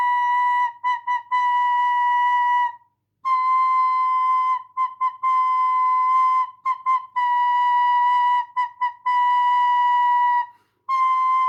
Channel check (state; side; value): identical; both; correlation 1.00